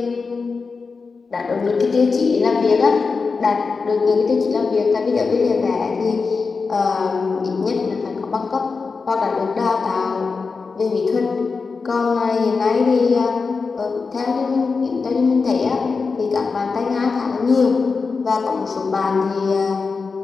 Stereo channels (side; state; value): right; quieter; 4.6 dB